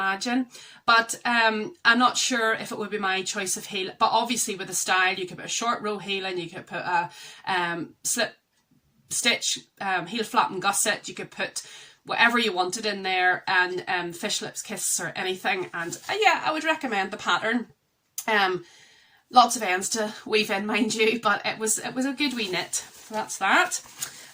But I'm not sure if it would be my choice of heel. But obviously with the style, you could put a short row heel and you could put a slip stitch, heel flap and gusset. You could put whatever you wanted in there, and fish lips kiss or anything. And yeah, I would recommend the pattern. Lots of ends to weave in, mind you, but it was a good wee knit. So that's that.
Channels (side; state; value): both; identical; correlation 1.00